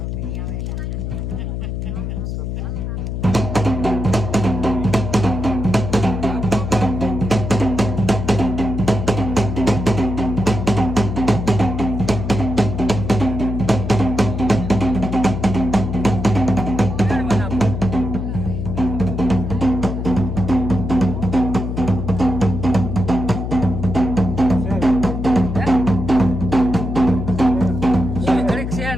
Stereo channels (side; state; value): left; noise; hum, 4 dB below the sound